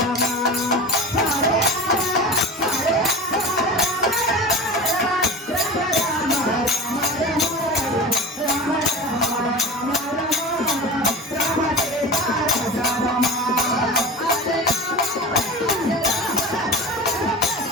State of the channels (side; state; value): both; normal; correlation 0.32